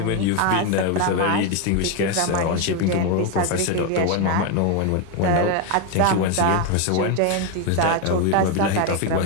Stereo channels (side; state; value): both; different; correlation 0.02